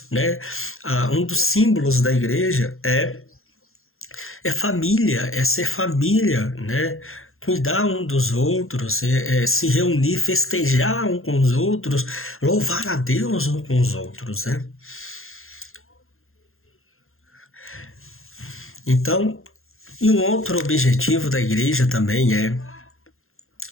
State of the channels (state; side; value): late; right; 0.61 ms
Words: né? Um dos símbolos da igreja é família, é ser família, né? Cuidar um dos outros, se reunir, festejar um com os outros, louvar a Deus um com os outros, né? Então, e um outro objetivo da igreja também é